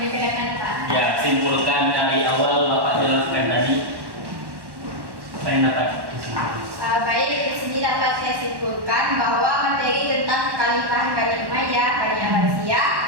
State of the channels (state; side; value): late; left; 1.1 ms